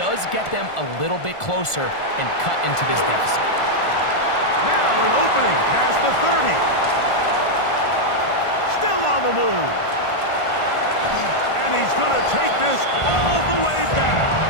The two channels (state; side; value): late; right; 1.5 ms